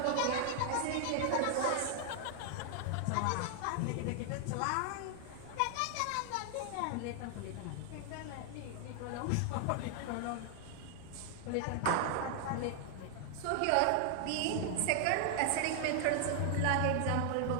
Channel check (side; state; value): both; different; correlation 0.00